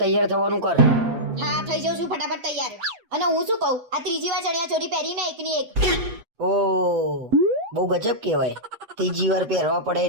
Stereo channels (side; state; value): left; late; 8.2 ms